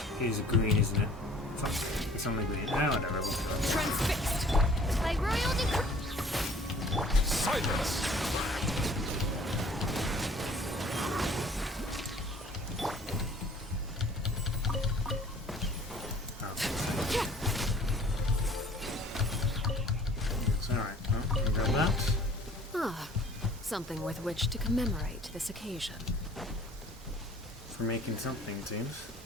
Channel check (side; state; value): both; normal; correlation 0.52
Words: is green, isn't it? Fuck, it's only green. Ah, whatever, we'll do it. Transfixed. By royal decree. Silence! Something with which to commemorate this occasion. For making something, it seems.